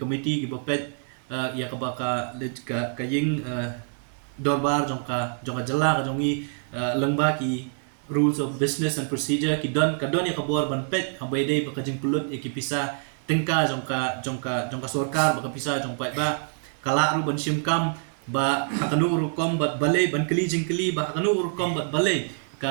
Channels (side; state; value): left; silent; 57 dB below the other